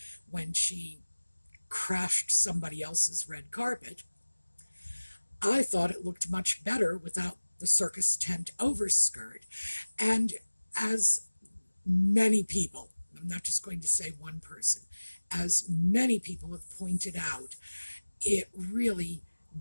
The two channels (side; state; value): both; inverted; correlation -1.00